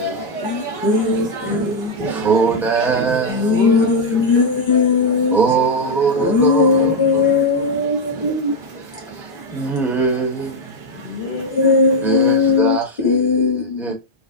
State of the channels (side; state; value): both; normal; correlation 0.01